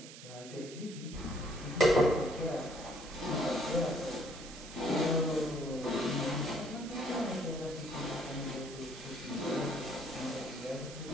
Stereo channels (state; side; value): noise; right; hiss, 14 dB below the sound